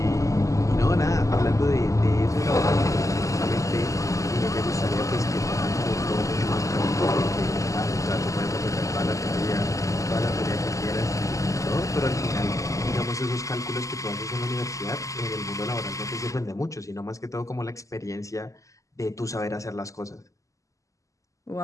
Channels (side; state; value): right; late; 0.16 ms